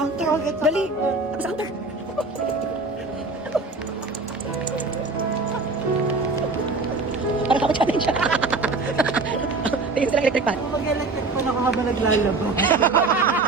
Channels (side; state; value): left; quieter; 3.7 dB